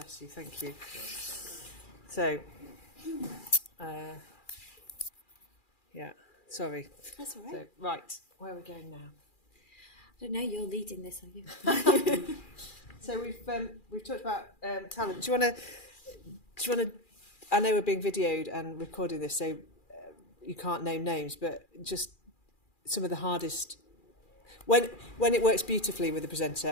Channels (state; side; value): late; right; 2.4 ms